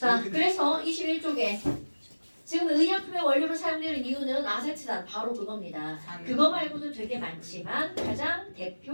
그래서 21쪽에 지금 의약품의 원료로 사용되는 이유는 아세트산 바로 그겁니다. 그거 말고도 되게 많지만 가장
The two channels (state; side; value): inverted; both; correlation -1.00